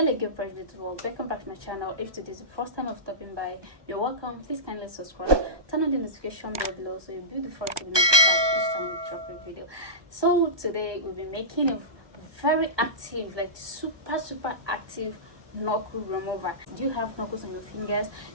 Project World. Welcome back to my channel. If today is the first time of stopping by, you're welcome. Please kindly subscribe, turn on the notification bell below so you'll be the first to be notified each time we drop a video. So today we'll be making a very active, like super active knuckle remover. Do you have knuckles on your fingers?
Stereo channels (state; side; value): late; left; 1.2 ms